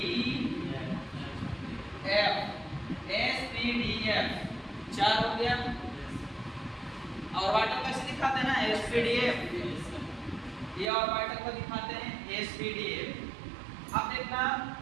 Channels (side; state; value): left; drops out; at 10.9 s